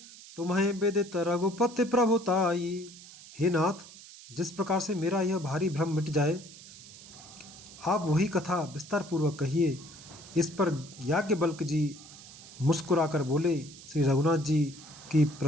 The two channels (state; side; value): noise; right; hiss, 18 dB below the sound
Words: तुम्हें विदित रघुपति प्रभुताई। हे नाथ, जिस प्रकार से मेरा यह भारी भ्रम मिट जाए, आप वही कथा विस्तार पूर्वक कहिए। इस पर याज्ञवल्क्य जी मुस्कुराकर बोले, श्री रघुनाथ जी की